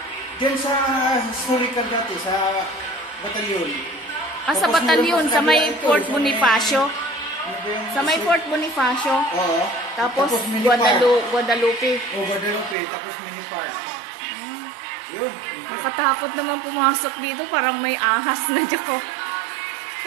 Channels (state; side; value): drops out; left; at 12.8 s